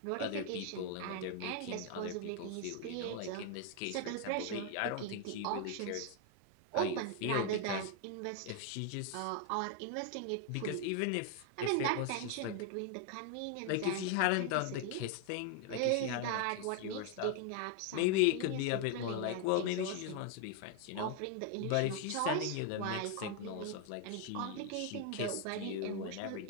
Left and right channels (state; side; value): different; both; correlation 0.00